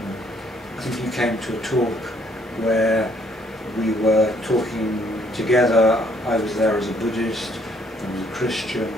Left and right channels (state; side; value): normal; both; correlation 0.65